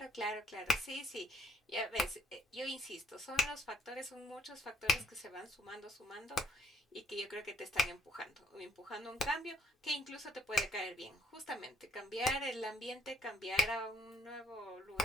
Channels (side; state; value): both; normal; correlation 0.68